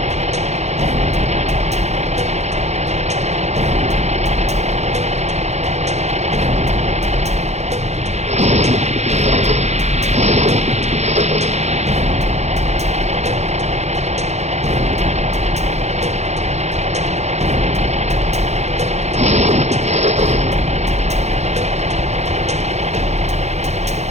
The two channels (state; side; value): late; left; 0.32 ms